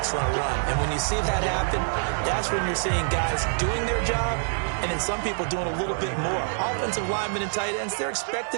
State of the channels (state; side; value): silent; left; digital silence